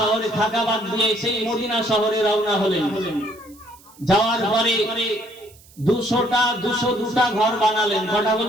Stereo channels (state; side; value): noise; right; hiss, 26 dB below the sound